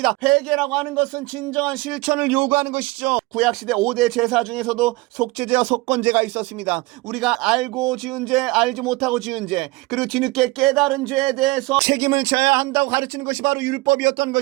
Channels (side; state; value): left; quieter; 22.7 dB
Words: 회개라고 하는 것은 진정한 실천을 요구하는 것이죠. 구약시대 5대 제사 중에서도 속죄제와 속건제가 있었습니다. 우리가 알고 지은 죄, 알지 못하고 지은 죄, 그리고 뒤늦게 깨달은 죄에 대해서 책임을 져야 한다고 가르치는 것이 바로 율법이었던